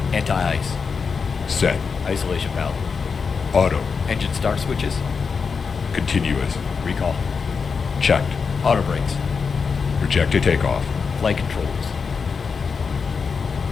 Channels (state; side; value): quieter; right; 5.4 dB